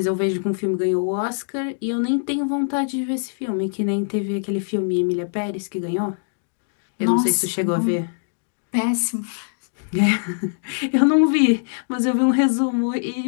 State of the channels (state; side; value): silent; right; digital silence